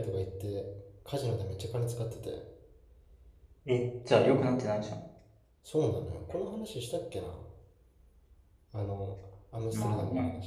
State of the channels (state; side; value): identical; both; correlation 1.00